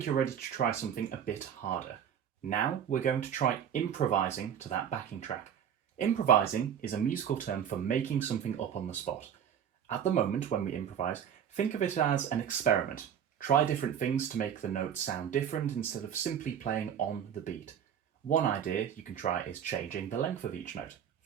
you're ready to try something a bit harder. Now we're going to try improvising to that backing track. Improvising is a musical term for making something up on the spot. At the moment when we improvise, think of it as an experiment. Try different things to make the notes sound different instead of simply playing on the beat. One idea you can try is changing the length of each note.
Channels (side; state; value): left; quieter; 8.8 dB